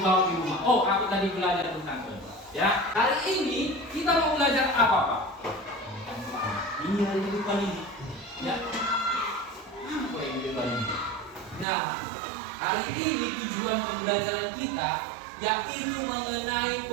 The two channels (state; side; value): drops out; left; at 11.7 s